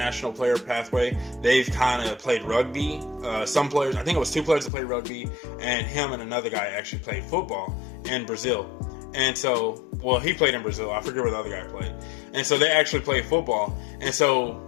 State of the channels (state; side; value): drops out; right; at 4.7 s